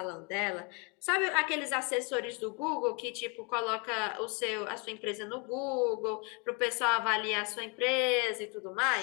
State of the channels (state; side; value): quieter; right; 32.5 dB